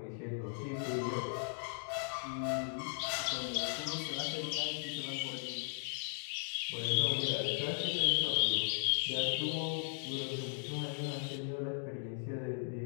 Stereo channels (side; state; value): right; silent; digital silence